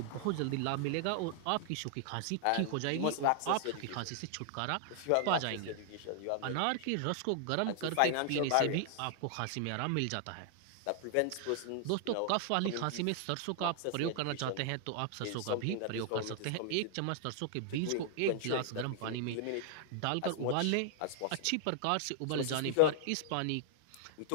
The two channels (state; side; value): different; both; correlation 0.00